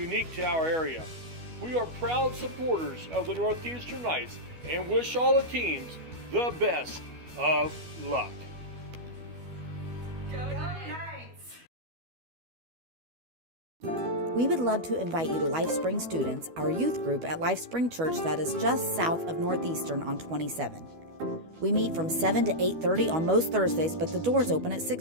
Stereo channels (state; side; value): late; left; 12 ms